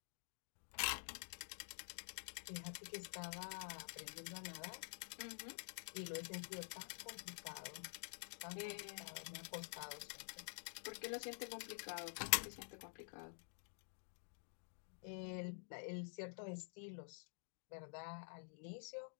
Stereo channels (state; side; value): silent; right; digital silence